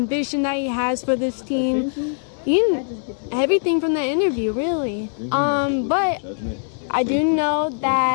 that he has for this team. Everything from that interview, really. But I do know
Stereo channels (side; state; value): right; silent; 64 dB below the other